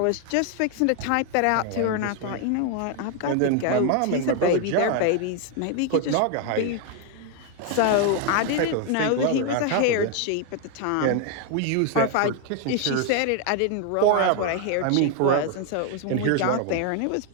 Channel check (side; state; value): both; different; correlation 0.01